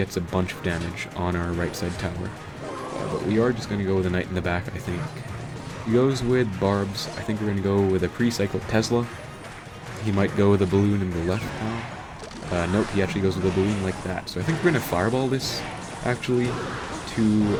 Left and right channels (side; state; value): both; identical; correlation 1.00